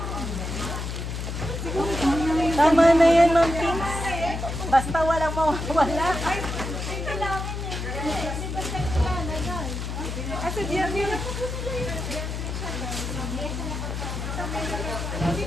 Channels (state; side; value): noise; left; hum, 4 dB below the sound